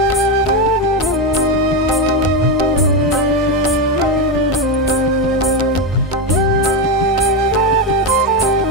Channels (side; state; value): both; normal; correlation 0.10